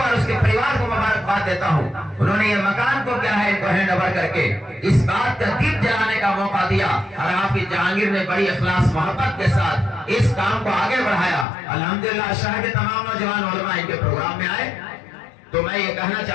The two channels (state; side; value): drops out; right; at 11.5 s